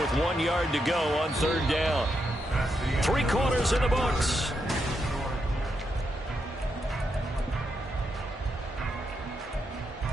1 yard to go on 3rd down. 3 quarters in the books.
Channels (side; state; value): both; normal; correlation 0.82